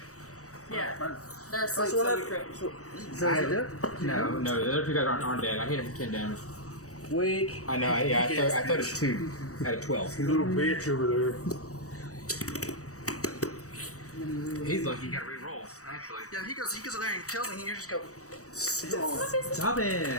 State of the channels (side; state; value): right; late; 0.65 ms